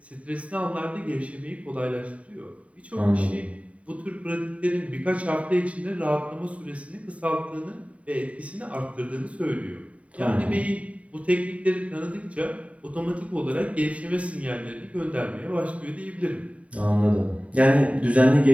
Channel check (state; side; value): late; left; 0.066 ms